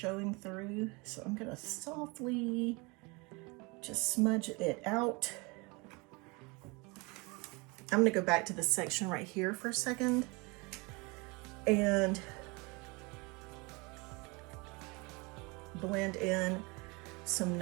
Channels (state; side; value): quieter; left; 27.7 dB